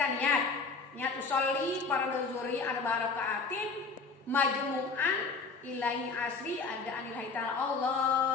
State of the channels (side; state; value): right; quieter; 4.5 dB